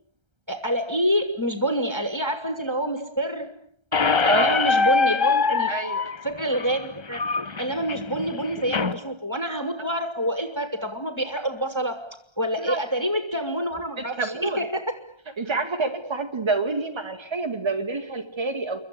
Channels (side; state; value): left; late; 1.3 ms